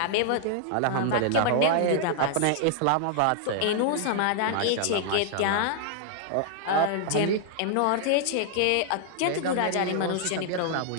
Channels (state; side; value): different; both; correlation -0.01